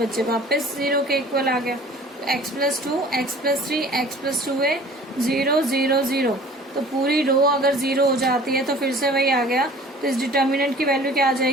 वापस 0 के इक्वल आ गया। तो x plus 2, x plus 3, x plus 2a, 0, 0, 0, तो पूरी रो अगर 0 हो जाती है तो फिर से वही आ गया, तो इस डिटर्मिनेंट की वैल्यू क्या आ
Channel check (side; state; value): both; normal; correlation 0.47